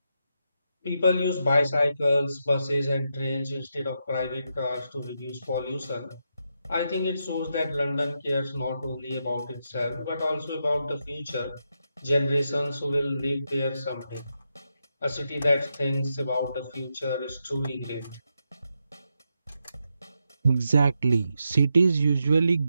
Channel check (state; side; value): inverted; both; correlation -0.84